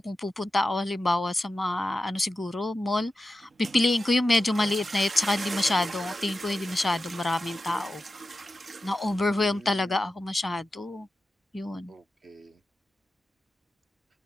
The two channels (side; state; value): both; normal; correlation 0.92